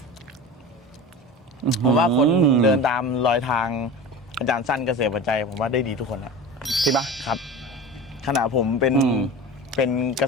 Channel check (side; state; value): both; normal; correlation 0.32